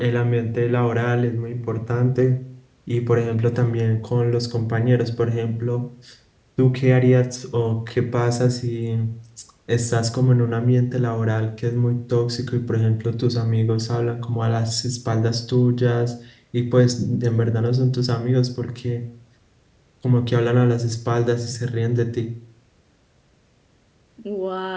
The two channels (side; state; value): both; identical; correlation 1.00